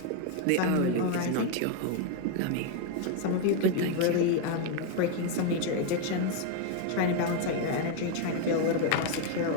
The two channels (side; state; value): both; different; correlation 0.01